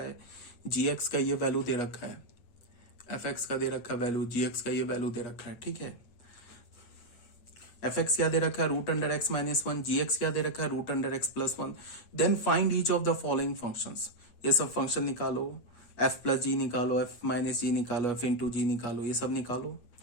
जी एक्स का ये वैल्यू दे रखा है, एफ एक्स का दे रखा है वैल्यू, जी एक्स का ये वैल्यू दे रखा है। ठीक है, एफ एक्स क्या दे रखा है? Root under x minus one. G x क्या दे रखा है? Root under x plus one. Then find each of the following functions. ये सब फंक्शन निकालो, एफ प्लस जी निकालो, एफ माइनस जी निकालो, एफ इंटू जी निकालो, ये सब निकालो।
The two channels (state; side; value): late; right; 8.3 ms